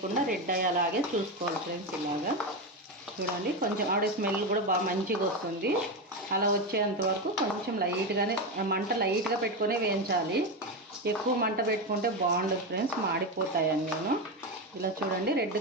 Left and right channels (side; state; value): both; normal; correlation 0.14